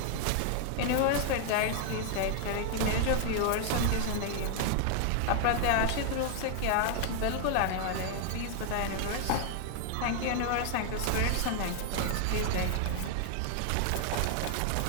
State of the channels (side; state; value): both; different; correlation 0.00